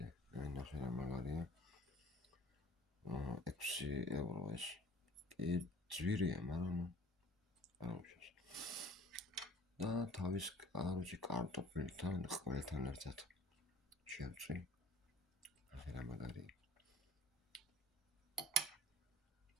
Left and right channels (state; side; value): normal; both; correlation 0.49